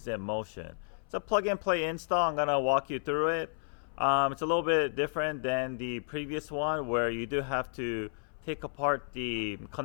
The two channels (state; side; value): silent; right; 56 dB below the other